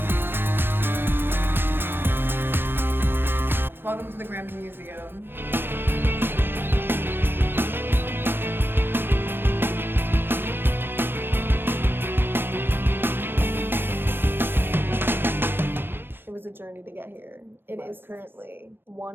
Welcome to the Grammy Museum. It was a journey to get here. It is currently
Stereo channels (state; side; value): late; left; 0.10 ms